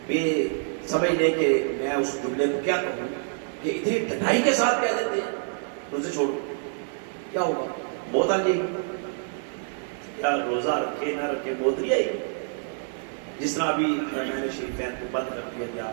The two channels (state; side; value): silent; left; digital silence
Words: بے سمجھ لے کہ میں اس جملے کو کیا کہوں کہ اتنی ڈھٹائی کے ساتھ کہہ دیتے ہیں روزے چھوڑو، کیا ہوگا؟ موت آ جائے گی۔ کیا روزہ رکھے نہ رکھے موت نہیں آئے گی؟ جس طرح ابھی حرمین شریفین کو بند کر دیا گیا